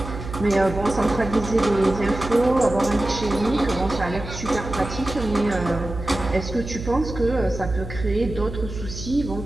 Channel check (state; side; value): noise; right; hum, 9 dB below the sound